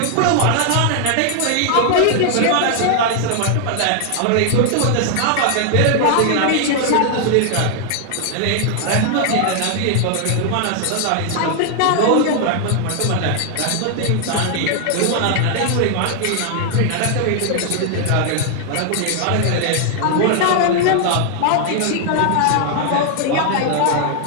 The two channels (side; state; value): both; different; correlation 0.00